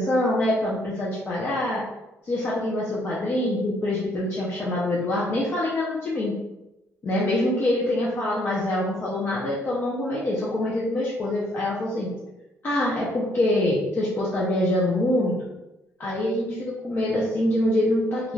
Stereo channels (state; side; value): normal; both; correlation 0.68